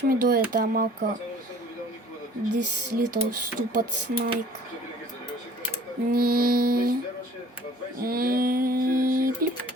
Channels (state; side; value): normal; both; correlation 0.51